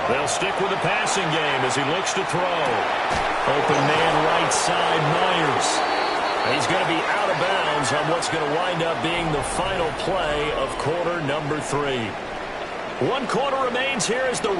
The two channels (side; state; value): both; identical; correlation 1.00